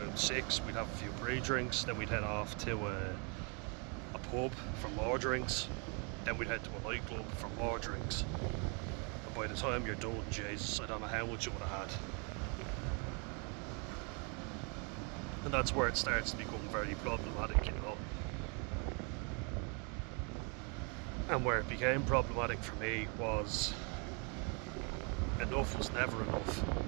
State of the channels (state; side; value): quieter; left; 35.2 dB